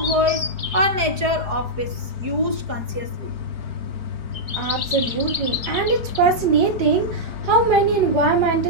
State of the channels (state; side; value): late; left; 4.8 ms